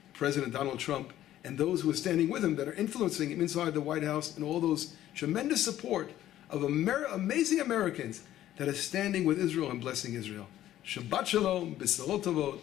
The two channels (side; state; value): right; quieter; 12.9 dB